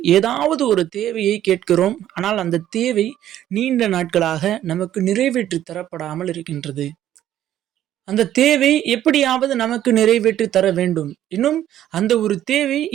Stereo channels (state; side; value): quieter; left; 12.0 dB